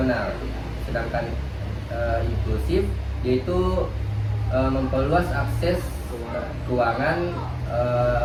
sedangkan inklusif yaitu memperluas akses keuangan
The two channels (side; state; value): both; identical; correlation 1.00